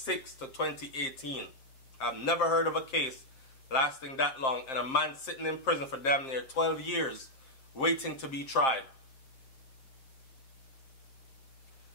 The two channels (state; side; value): late; right; 7.5 ms